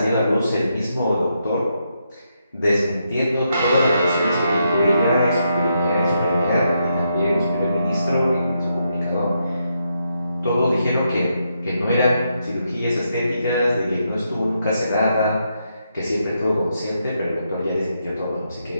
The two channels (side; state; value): both; inverted; correlation -0.81